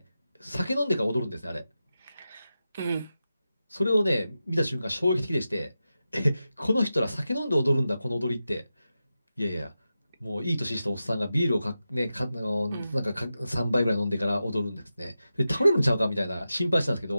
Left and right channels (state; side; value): inverted; both; correlation -0.91